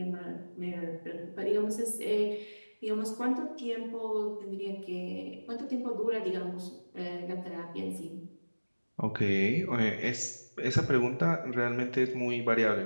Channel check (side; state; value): both; inverted; correlation -1.00